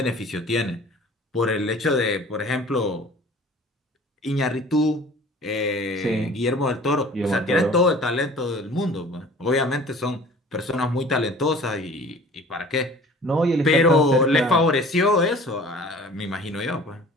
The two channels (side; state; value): both; normal; correlation 0.46